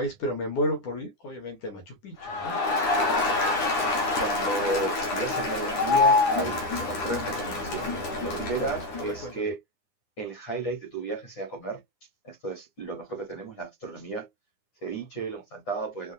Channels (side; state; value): right; late; 9.8 ms